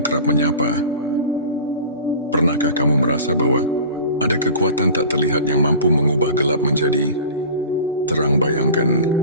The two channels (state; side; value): inverted; both; correlation -0.38